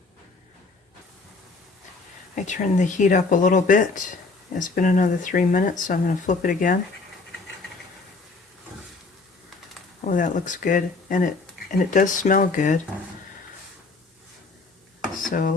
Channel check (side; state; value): right; quieter; 3.8 dB